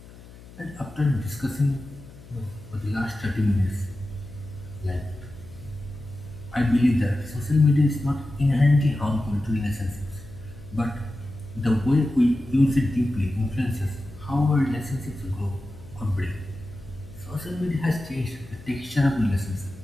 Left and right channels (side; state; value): left; noise; hum, 19 dB below the sound